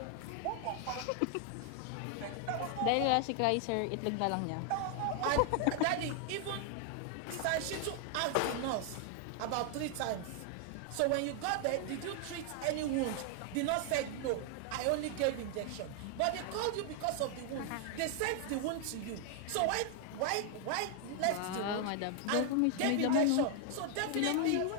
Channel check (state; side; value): different; both; correlation 0.00